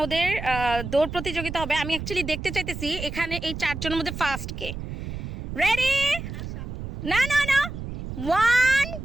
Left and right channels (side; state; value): right; noise; rumble, 7 dB below the sound